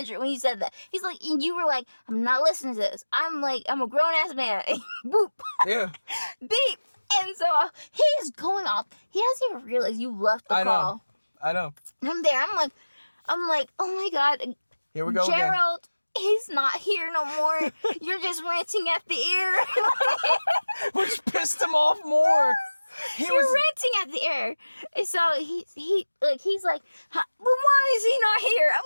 when he said that. He's like, and you were like, I'm not listening to this. I'm a grown ass man. Boop. Yeah. Beep. And so he's going off. He doesn't even realize you left the call. I know. And I'm there. I'm like, oh my God. Here we go Gerald. Again. He's not here no more. You're just ranting at the ear. Which pissed him off more. You're ranting at the air. And so he's like, but why is he not here?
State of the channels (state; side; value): inverted; both; correlation -1.00